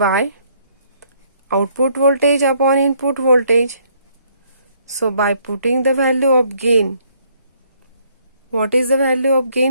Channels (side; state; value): both; inverted; correlation -0.67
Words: output voltage upon input voltage. So by putting the value of gain, what is the value of